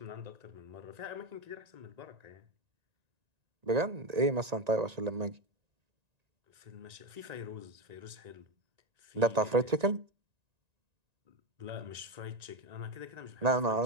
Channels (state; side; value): late; left; 1.9 ms